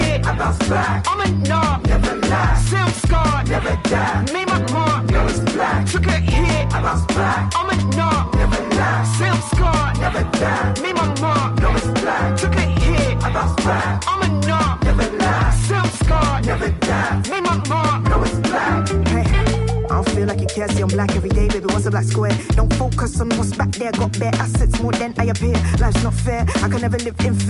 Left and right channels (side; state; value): both; identical; correlation 1.00